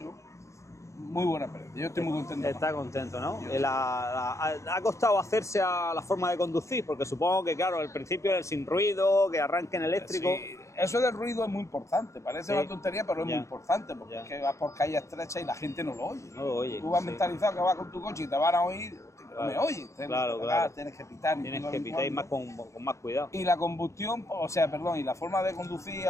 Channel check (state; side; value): late; right; 0.14 ms